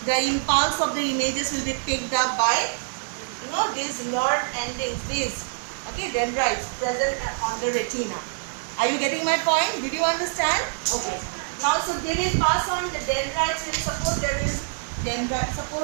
The impulse of the images will be picked up by these nerve endings, these dendrites present on the retina. Are you getting my point? Did you understand? Okay. Now, so they will pass on the dendrites. Suppose there is dendrite.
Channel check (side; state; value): left; silent; digital silence